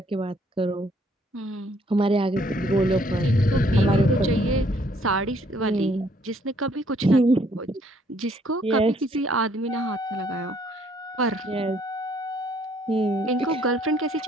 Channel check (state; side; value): normal; both; correlation 0.65